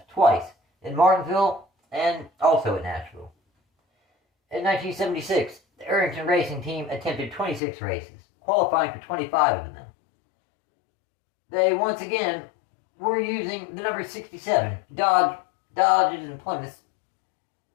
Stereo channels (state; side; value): drops out; right; at 7.6 s